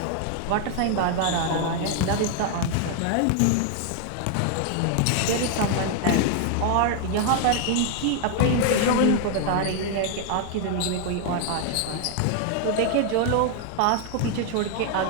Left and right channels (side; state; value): both; different; correlation 0.00